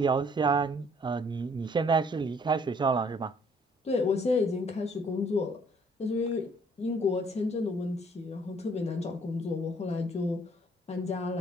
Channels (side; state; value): both; normal; correlation 0.62